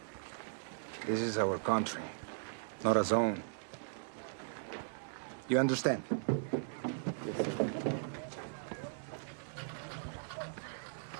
This is our country, not a zone. You understand? Yes, sir.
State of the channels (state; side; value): silent; left; digital silence